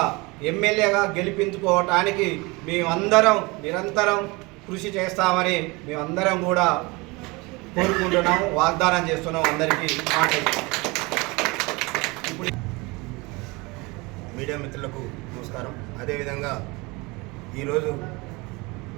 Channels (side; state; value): left; quieter; 25.3 dB